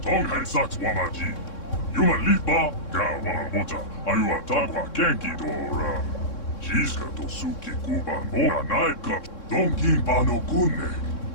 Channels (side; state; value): right; late; 3.6 ms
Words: Tonghai Sax Wamaji, Yuma Lipa, Kawanabota, Ayua Takwa Kenki Dora, Jiska Tosuki Kuban Ora Naikachu, Donkin Bano Kunne,